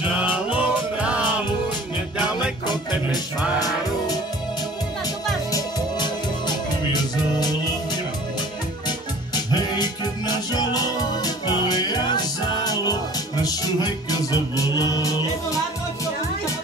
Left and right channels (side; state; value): both; normal; correlation 0.47